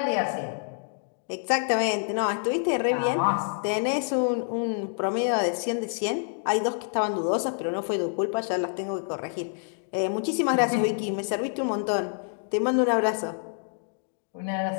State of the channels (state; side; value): silent; right; digital silence